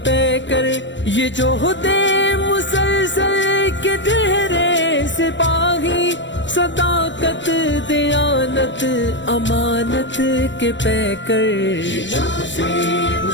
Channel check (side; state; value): right; late; 0.53 ms